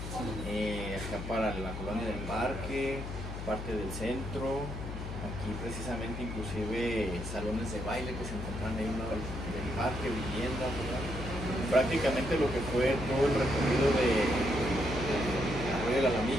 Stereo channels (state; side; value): noise; left; hum, 7 dB below the sound